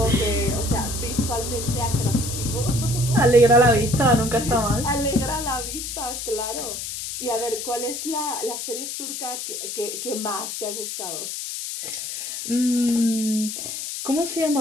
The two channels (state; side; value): noise; left; hiss, 6 dB below the sound